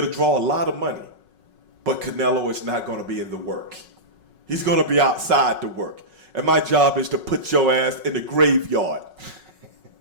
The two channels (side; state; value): left; late; 5.4 ms